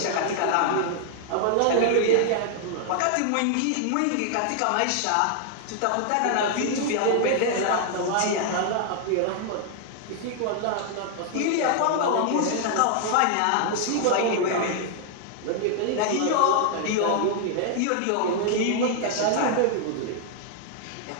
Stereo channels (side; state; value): both; different; correlation 0.00